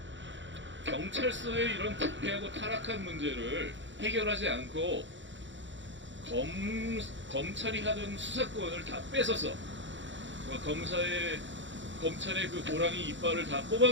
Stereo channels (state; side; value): late; left; 0.54 ms